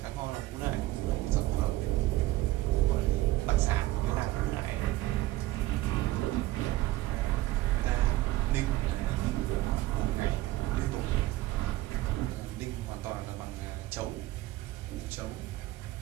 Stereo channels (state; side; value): quieter; left; 17.0 dB